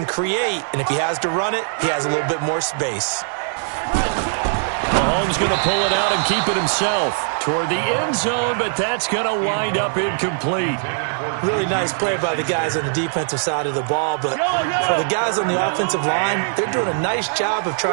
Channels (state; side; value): silent; left; digital silence